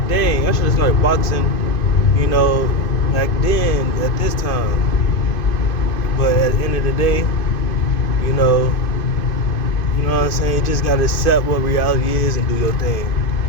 dang, I should have started boxing, back then at this time. But at the end of the day, you know what I'm saying? You just gotta accept what reality is and do your thing.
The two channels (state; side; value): late; right; 2.5 ms